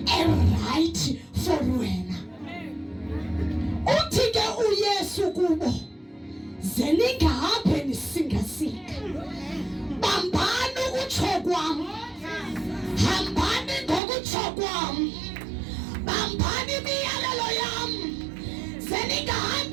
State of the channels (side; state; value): left; drops out; at 14.0 s